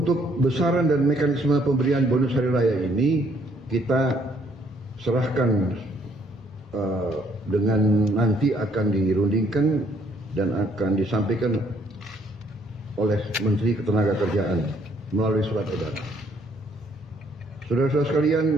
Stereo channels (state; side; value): normal; both; correlation 0.66